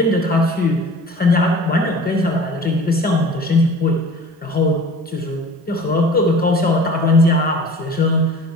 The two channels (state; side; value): normal; both; correlation 0.43